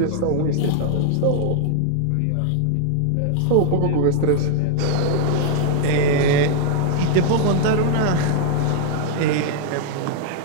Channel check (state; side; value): different; both; correlation 0.00